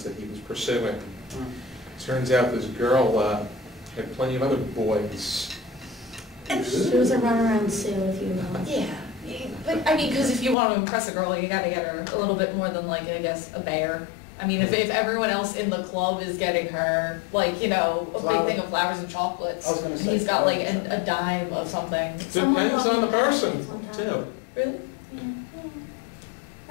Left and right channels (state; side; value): drops out; right; at 10.6 s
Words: that he was pursuing. Turns out this girl had plenty of other boys. She was a runaround Sue, if you will. Yeah, but I mean, because if you want to impress a girl, you got to get her a little bit more than, like, I guess, a bear. I mean, if everyone else in the club is getting her, like, you know, a big thing of flowers and chocolates, and he's got, like, a dime of something. Depends on the person, too. Really? Yeah.